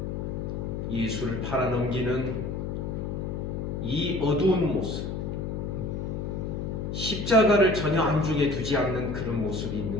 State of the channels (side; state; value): left; noise; hum, 3 dB below the sound